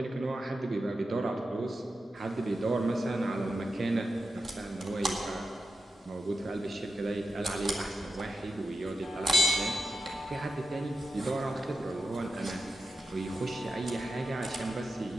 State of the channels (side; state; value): both; normal; correlation 0.90